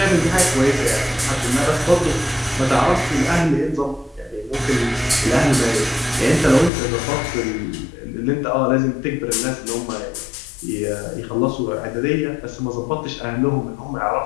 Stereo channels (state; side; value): drops out; right; at 6.7 s